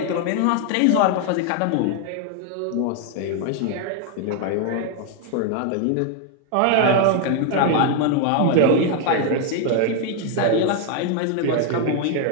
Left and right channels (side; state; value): both; different; correlation 0.01